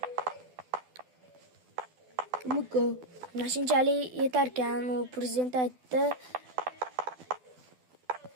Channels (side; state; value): left; late; 12 ms